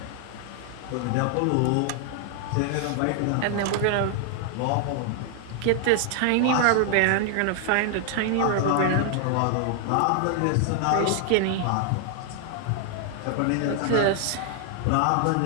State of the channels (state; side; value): different; both; correlation 0.00